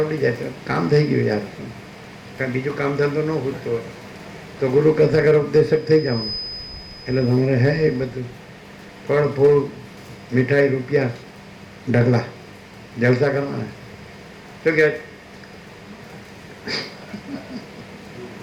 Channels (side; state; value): both; identical; correlation 1.00